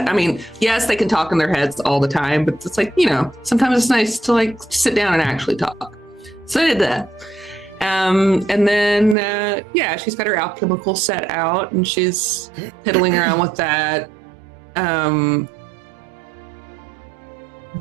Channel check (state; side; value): drops out; left; at 9.2 s